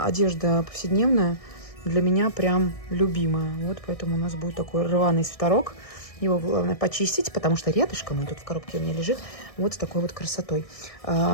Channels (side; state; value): right; late; 1.6 ms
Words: одежда повседневная для меня прям любимая. Вот поэтому у нас будет такой рваный свитерок. Его главное почистить, потому что рядышком, он тут в коробке у меня лежит, вот с такой вот красотой.